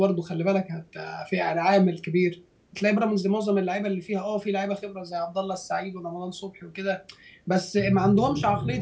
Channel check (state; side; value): identical; both; correlation 1.00